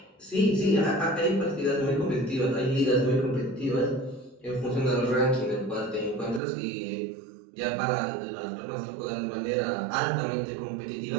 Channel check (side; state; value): left; drops out; at 6.4 s